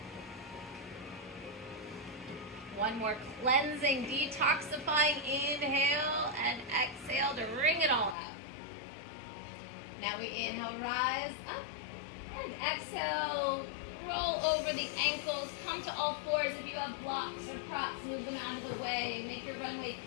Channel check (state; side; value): drops out; right; at 8.2 s